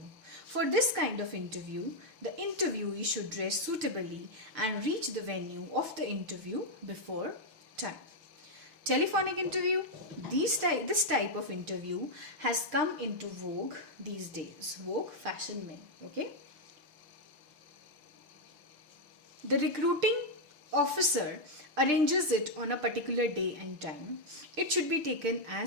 For this kind of interview, the interviewee should dress suitably and reach the venue of the interview before time. Telephonic interview. This type of interview has come into vogue these days. Vogue fashion में. Okay. The recruiting officer arranges it on a particular day and time. It should be taken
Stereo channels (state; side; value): late; left; 6.6 ms